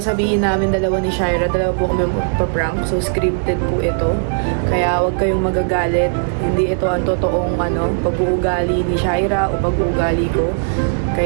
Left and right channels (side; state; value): left; silent; digital silence